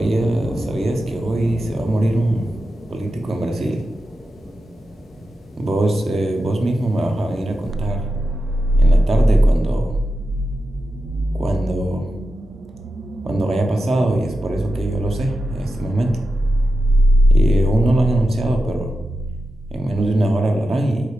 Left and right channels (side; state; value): both; normal; correlation 0.90